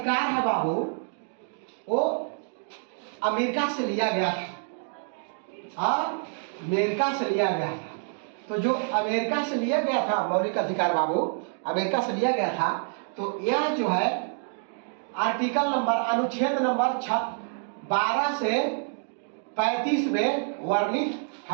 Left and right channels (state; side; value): silent; left; 60 dB below the other